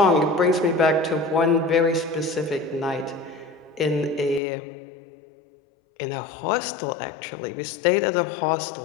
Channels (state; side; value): drops out; right; at 4.4 s